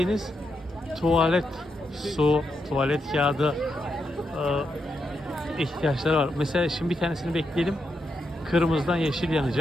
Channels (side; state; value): both; normal; correlation 0.83